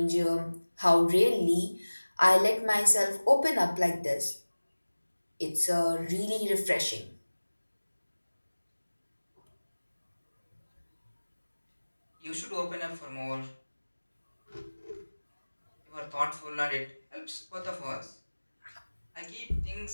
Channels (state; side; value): inverted; both; correlation -1.00